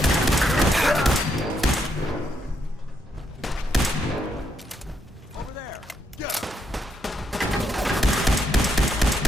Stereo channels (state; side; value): normal; both; correlation 0.78